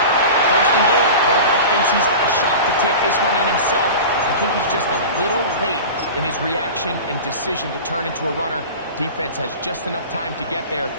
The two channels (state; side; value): inverted; both; correlation -0.33